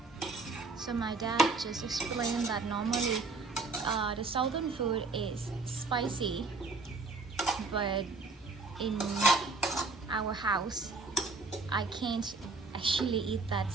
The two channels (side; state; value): left; quieter; 3.9 dB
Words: So my dad just explained that normally the southern food is spicy, but in our house I can't actually eat that